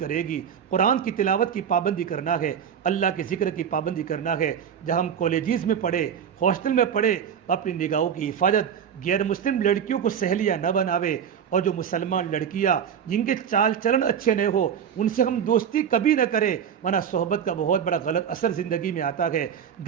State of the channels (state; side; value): quieter; left; 8.1 dB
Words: گی، قرآن کی تلاوت کی پابندی کرنا ہے، اللہ کے ذکر کی پابندی کرنا ہے۔ جہاں ہم کالجز میں پڑھے، ہاسٹل میں پڑھے، اپنی نگاہوں کی حفاظت، غیر مسلم لڑکیوں کو سہیلیاں نہ بناوے، اور جو مسلمان لڑکیاں جن کے چال چلن اچھے نہ ہو ان سے ہم دوستی کبھی نہ کریں، ورنہ صحبت کا بہت بڑا غلط اثر زندگی میں آتا ہے۔